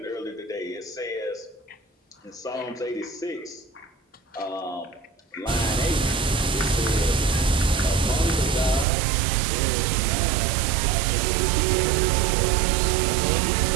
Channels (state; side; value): drops out; left; at 8.8 s